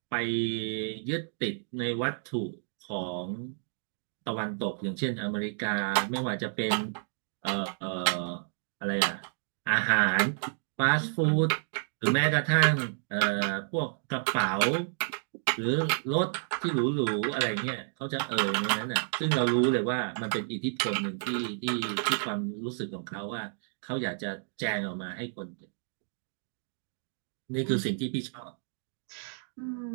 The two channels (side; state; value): left; silent; digital silence